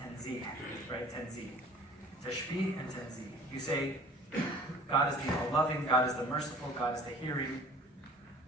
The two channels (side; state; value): both; normal; correlation 0.48